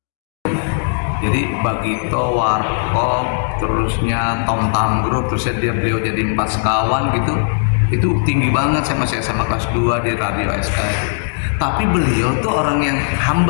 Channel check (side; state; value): right; silent; digital silence